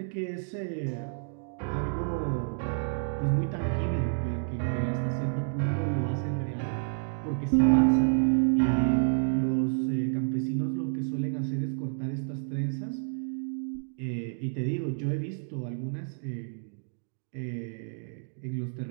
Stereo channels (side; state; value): left; silent; digital silence